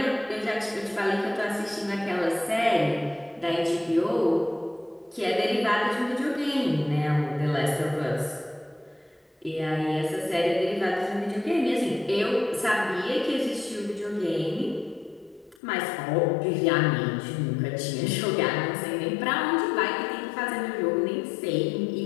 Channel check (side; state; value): right; drops out; at 15.6 s